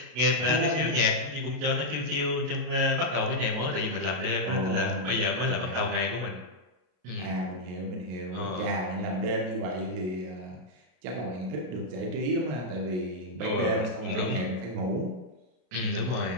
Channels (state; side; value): late; left; 33 ms